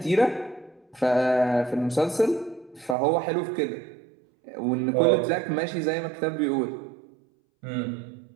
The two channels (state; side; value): drops out; left; at 3.0 s